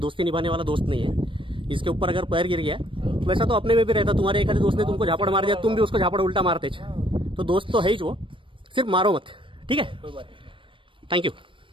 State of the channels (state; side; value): late; left; 0.25 ms